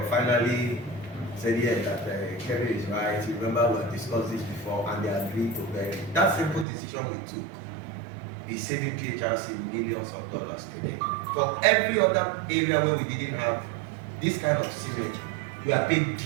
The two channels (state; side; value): drops out; left; at 6.7 s